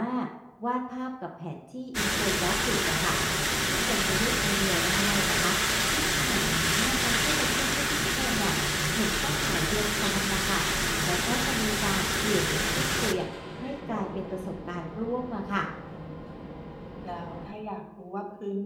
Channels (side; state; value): both; identical; correlation 1.00